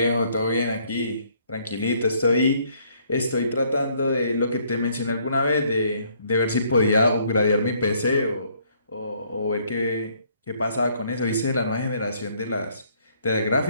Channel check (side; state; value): both; inverted; correlation -0.65